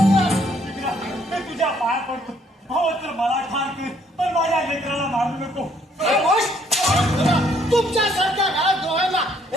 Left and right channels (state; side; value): normal; both; correlation 0.66